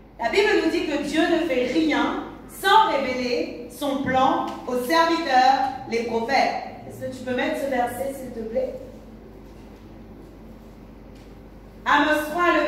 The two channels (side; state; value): both; identical; correlation 1.00